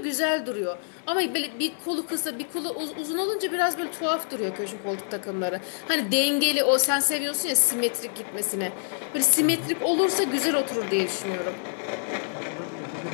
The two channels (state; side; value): silent; right; digital silence